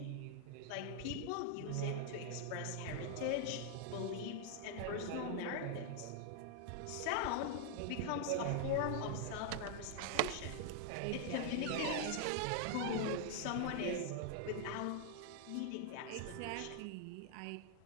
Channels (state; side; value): different; both; correlation 0.00